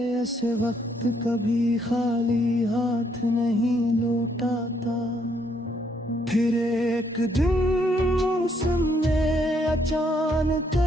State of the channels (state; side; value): normal; both; correlation 0.71